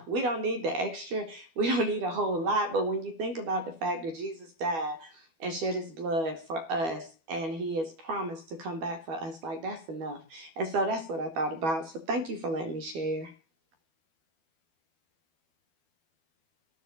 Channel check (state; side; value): late; left; 12 ms